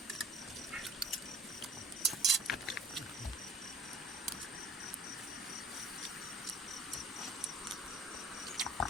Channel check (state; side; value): normal; both; correlation 0.51